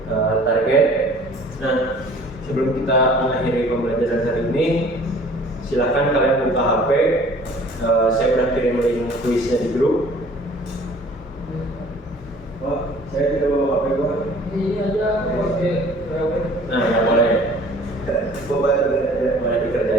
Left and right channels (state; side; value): normal; both; correlation 0.50